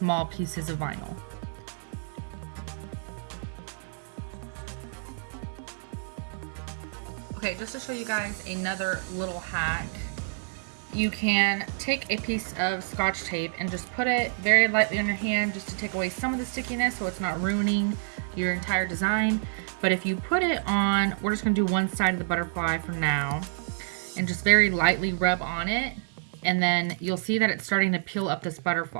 pieces of vinyl. Okay, just to show you guys another little hack, you can take a piece of Scotch tape and just put it very lightly on your hand just to take away some of the stickiness so it's not ruining your entire design. But if you put it on, we're just gonna do one side of the butterfly for now, and just very lightly rub on it, and then you'll see that it's starting to peel up this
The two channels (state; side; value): silent; left; digital silence